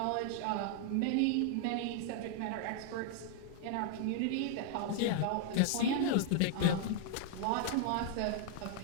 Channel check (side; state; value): both; different; correlation -0.01